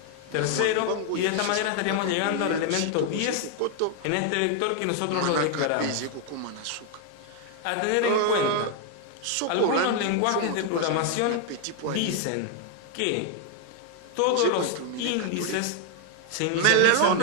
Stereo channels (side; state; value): both; different; correlation 0.00